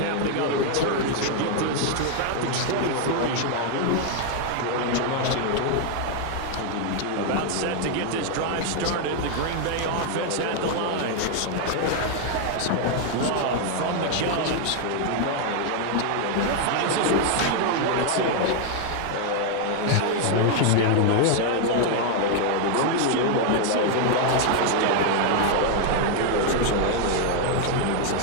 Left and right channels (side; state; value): both; different; correlation 0.00